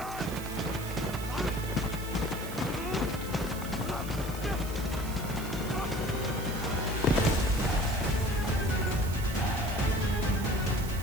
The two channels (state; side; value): noise; right; hiss, 13 dB below the sound